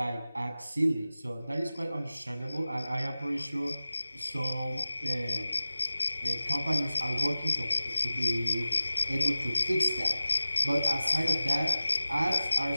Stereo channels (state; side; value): inverted; both; correlation -0.96